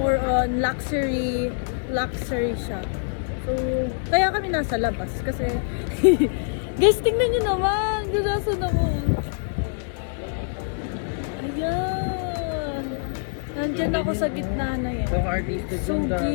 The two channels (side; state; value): right; silent; digital silence